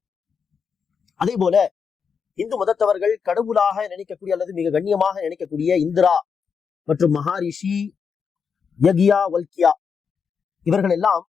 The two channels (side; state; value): right; quieter; 6.2 dB